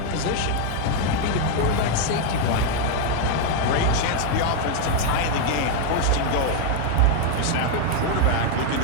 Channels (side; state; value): both; different; correlation 0.01